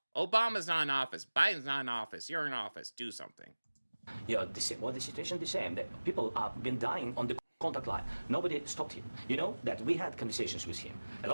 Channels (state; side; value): inverted; both; correlation -1.00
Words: Obama's not in office. Biden's not in office. You're in office. Do something. Yeah, the situation the same. That people have been dying on the contact line. Nobody stopped him. You know that we had conversations with him, a